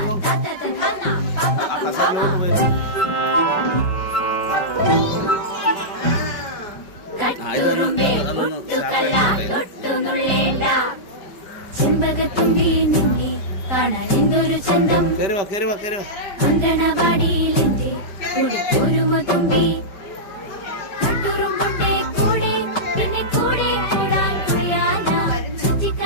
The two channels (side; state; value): right; late; 5.3 ms